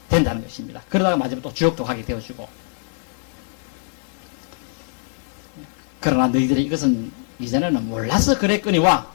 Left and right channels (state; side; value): silent; right; 64 dB below the other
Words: 된다는 것입니다. 그러다가 마지막에 또 지옥도 가게 되어지고. 그러나 너희들이 이것은 이전에는 몰라서 그랬거니와